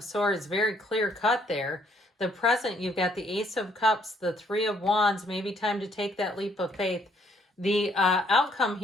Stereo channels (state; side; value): normal; both; correlation 0.67